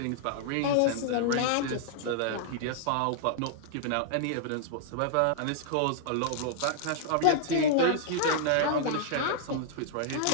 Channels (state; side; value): different; both; correlation -0.01